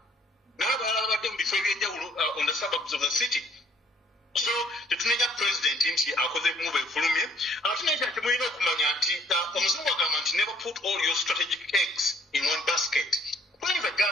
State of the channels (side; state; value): both; normal; correlation 0.62